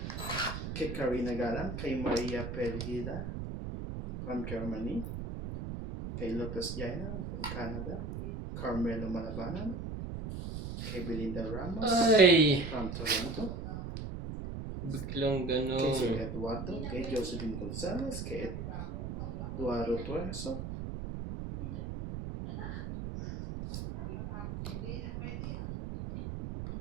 Kay Karina Galan, kay Maria Pergida from Germany, kay Lopez Jaina from Canada, Carmelo Malabanan, kay Belinda Ramos Ay! from Toronto, Biglang kay Sir gano'n. Eduardo, kay Josephine Gonzalez, kay Eduardo Tuerso,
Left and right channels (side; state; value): right; noise; rumble, 6 dB below the sound